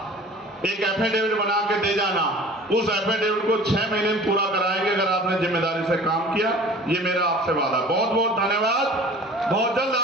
एक एफिडेविट बना के दे जाना। उस एफिडेविट को 6 महीने में पूरा कराएंगे अगर आपने जिम्मेदारी से काम किया। ये मेरा आपसे वादा। बहुत बहुत धन्यवाद। बहुत जल्द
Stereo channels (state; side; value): normal; both; correlation 0.44